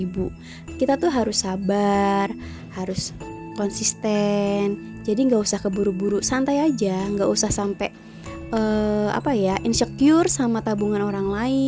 Kita tuh harus sabar, harus konsisten. Jadi gak usah keburu-buru, santai aja, gak usah sampai insecure sama tabungan orang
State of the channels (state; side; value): identical; both; correlation 1.00